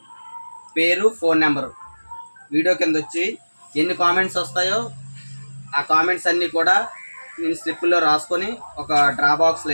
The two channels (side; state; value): both; inverted; correlation -1.00